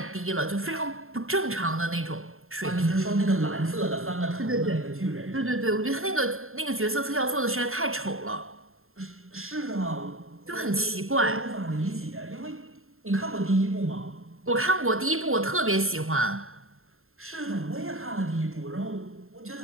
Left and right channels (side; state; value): left; late; 0.61 ms